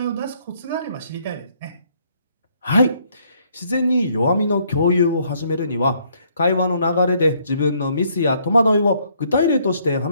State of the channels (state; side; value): inverted; both; correlation -0.68